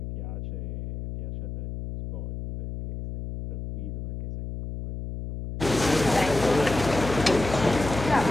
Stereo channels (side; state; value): left; noise; hum, 7 dB below the sound